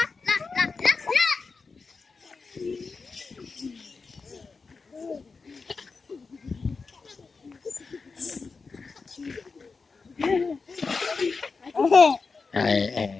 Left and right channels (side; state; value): right; quieter; 4.5 dB